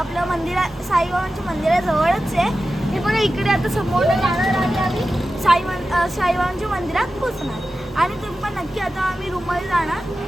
साईबाबांच्या मंदिराजवळच आहे. हे पण इकडे आता समोर जाणार आणि आम्ही साईबाबांच्या मंदिरात पोचणार. आणि तुम्ही पण नक्की आता आम्ही रूममध्ये जाणार.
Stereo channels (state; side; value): normal; both; correlation 0.93